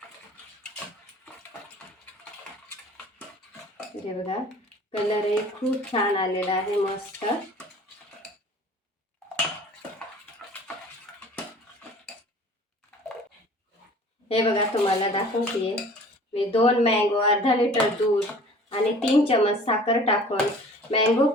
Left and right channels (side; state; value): both; normal; correlation 0.47